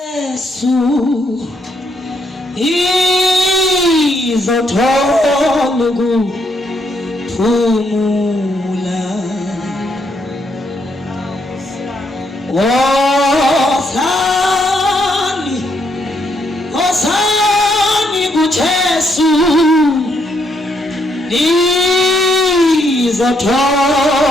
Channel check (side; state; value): both; normal; correlation 0.75